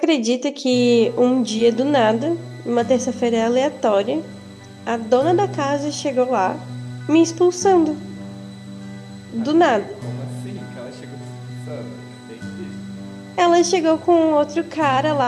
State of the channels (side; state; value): both; identical; correlation 1.00